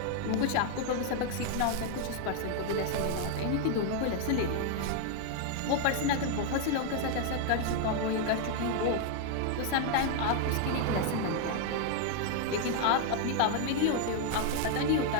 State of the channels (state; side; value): different; both; correlation 0.00